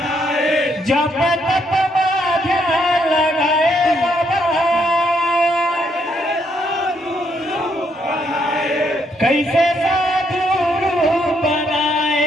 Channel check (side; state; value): both; normal; correlation 0.74